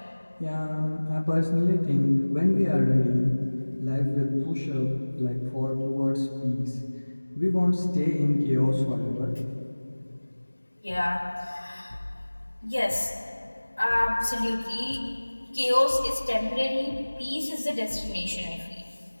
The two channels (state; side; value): inverted; both; correlation -1.00